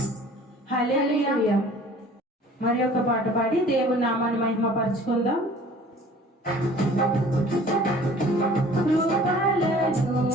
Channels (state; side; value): normal; both; correlation 0.49